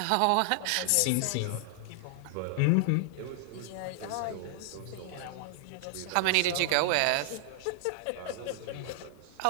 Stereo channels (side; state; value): both; different; correlation 0.00